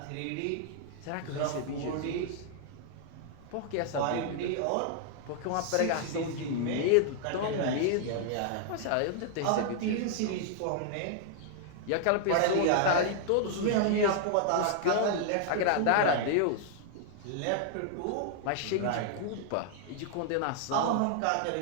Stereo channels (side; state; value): both; different; correlation -0.01